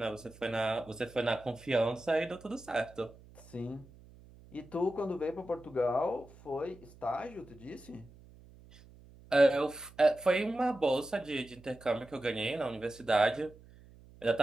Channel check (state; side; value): noise; right; hum, 22 dB below the sound